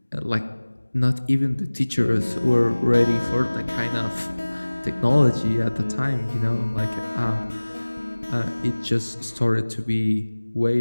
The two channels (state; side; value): inverted; both; correlation -1.00